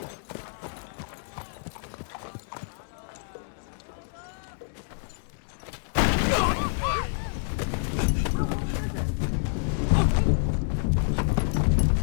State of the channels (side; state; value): right; silent; digital silence